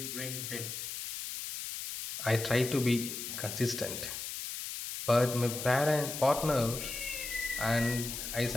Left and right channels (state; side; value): noise; left; hiss, 6 dB below the sound